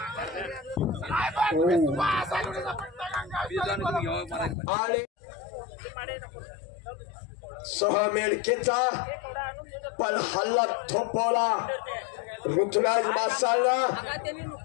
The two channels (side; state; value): right; drops out; at 4.5 s